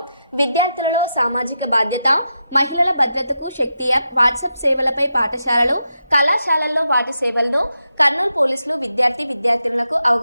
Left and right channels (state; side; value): inverted; both; correlation -0.86